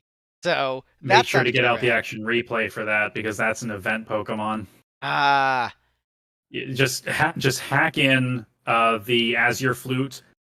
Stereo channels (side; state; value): both; identical; correlation 1.00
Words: So Make that sure sounds to get pretty out the rad. action replay for that because that's an event Pokemon. Ah, Just hack in the Azure Flute.